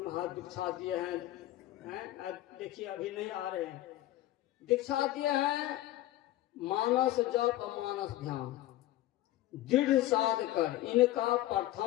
हाथ दीक्षा दिए हैं, देखिए अभी नहीं आ रहे हैं, दीक्षा दिए हैं मानस जप मानस ध्यान दृढ़ साध कर इनका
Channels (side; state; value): right; quieter; 15.1 dB